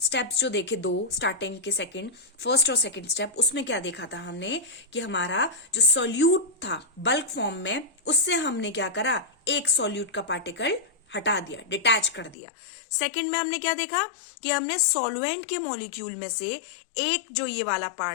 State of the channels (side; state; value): right; drops out; at 12.4 s